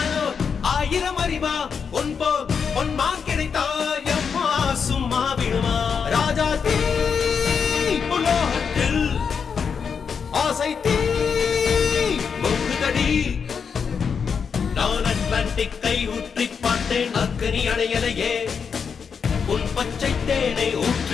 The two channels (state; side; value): quieter; right; 6.3 dB